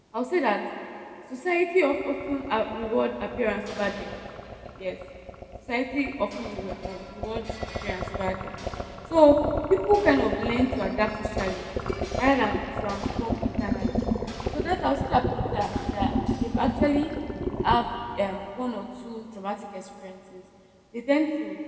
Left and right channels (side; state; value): both; identical; correlation 1.00